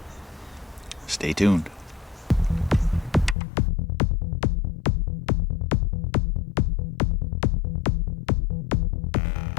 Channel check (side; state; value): right; drops out; at 3.4 s